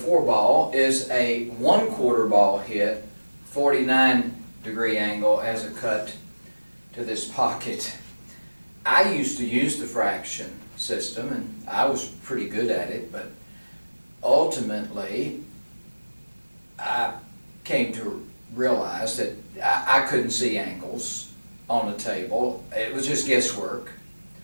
ball is a 1/4 ball hit, 49-degree angle as a cut to this pocket. I used to use the fraction system, and I was pretty good at it, but ultimately I came to realize that I couldn't see angles on the table. It was just guesswork.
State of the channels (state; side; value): inverted; both; correlation -1.00